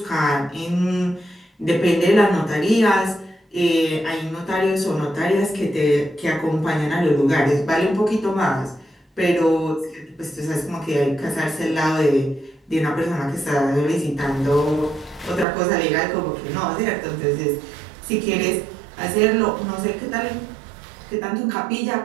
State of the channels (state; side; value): drops out; left; at 15.5 s